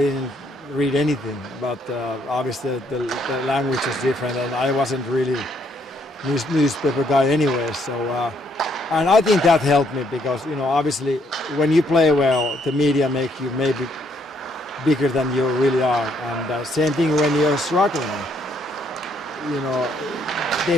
read anything, but obviously the language was different, and I wasn't really newspaper guy anyway. So, and I think that helped me because obviously when you play well, the media make you maybe bigger than you really are, and same thing when you're struggling. They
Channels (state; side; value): normal; both; correlation 0.70